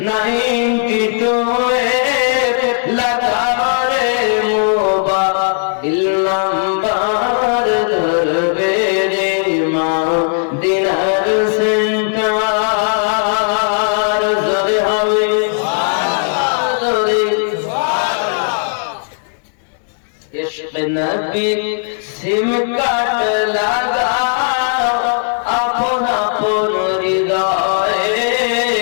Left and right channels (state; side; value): silent; right; digital silence